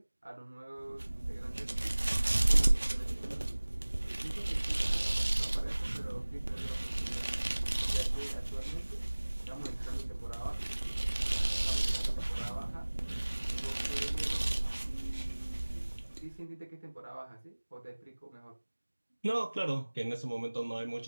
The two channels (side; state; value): both; inverted; correlation -1.00